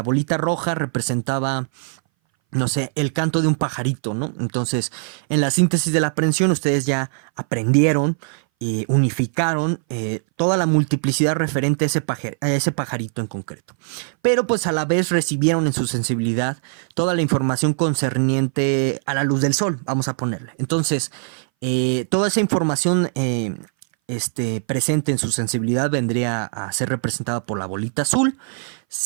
bolita roja representaba, no sé, el canto de un pajarito, ¿no? Entonces, en la síntesis de la aprehensión, ustedes ya aprendieron y unificaron toda la multiplicidad referente a ese pajarito en concreto. Pero pues a la vez recibieron en su sensibilidad toda la información concerniente a la luz del sol, vamos a ponerle. Entonces, toda esa información presente en su sensibilidad vendría a ser representada por la bolita azul.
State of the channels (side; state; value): left; silent; 61 dB below the other